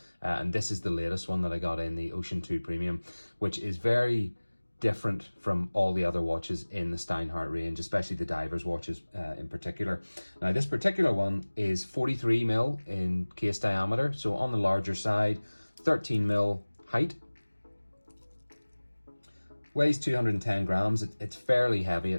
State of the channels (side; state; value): both; inverted; correlation -1.00